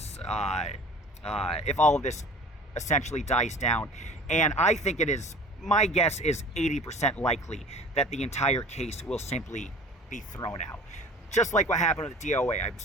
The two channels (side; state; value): both; normal; correlation 0.43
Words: essentially dies down. And I think it is, my guess is 80% likely that the entire case will simply be thrown out. Just like what happened with the DOA. I'm